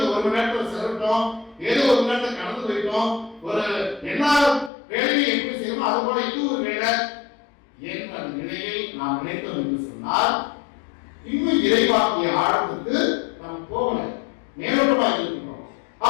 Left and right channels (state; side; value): drops out; right; at 4.7 s